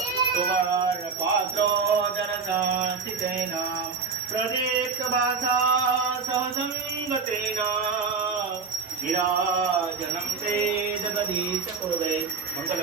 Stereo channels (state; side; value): quieter; left; 5.2 dB